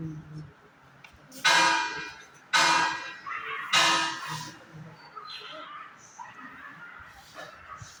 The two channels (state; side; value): identical; both; correlation 1.00